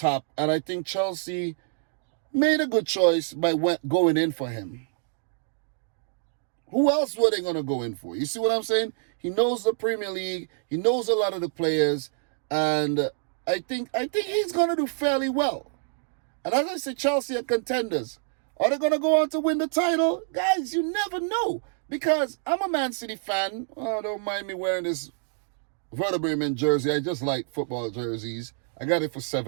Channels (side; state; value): left; silent; digital silence